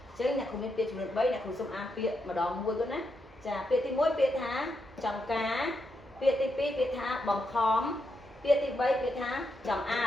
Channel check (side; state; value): both; normal; correlation 0.83